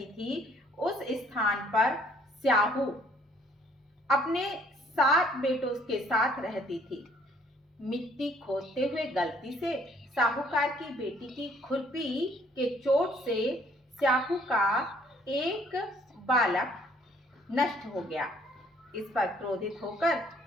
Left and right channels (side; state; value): both; normal; correlation 0.61